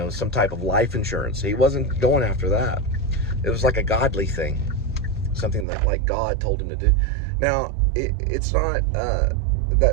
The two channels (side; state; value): left; drops out; at 5.7 s